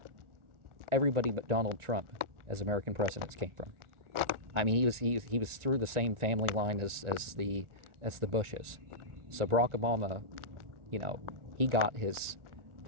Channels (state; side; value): late; left; 1.4 ms